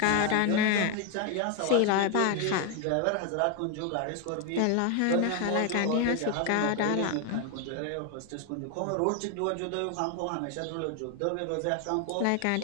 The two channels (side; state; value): both; different; correlation 0.01